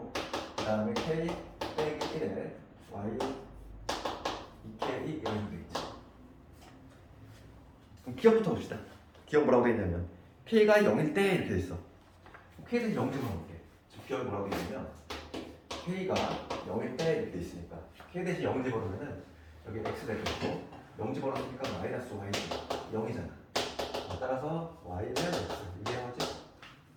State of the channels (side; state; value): both; identical; correlation 1.00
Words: 그 다음에 k 빼기 1에 y 2k 이런 식으로 돼 있지. 그럼 기억부터 봅시다. 기억 뭐라고 돼 있냐면 k가 0일 때 이렇게 돼 있어. k에서 0 집어넣을게. 기억이 뭐라고 돼 있냐면 k가 0일 때 이렇게 돼 있으니까 k 대신 0 집어넣으면은 여기 x 될 거고 0 집어넣으니까 마이너스 y 0이잖아. 따라서 y는 x 이게 뭐지?